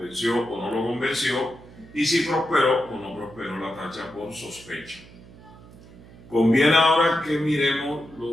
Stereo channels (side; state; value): right; noise; hum, 21 dB below the sound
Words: o no lo convenció, y si prosperó o no prosperó la tacha por sospecha. Conviene ahora que miremos